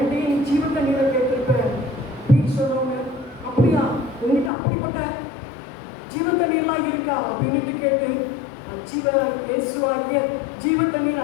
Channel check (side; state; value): right; drops out; at 4.5 s